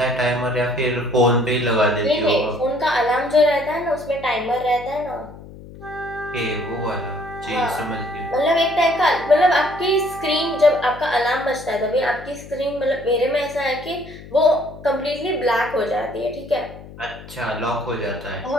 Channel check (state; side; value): noise; left; hum, 17 dB below the sound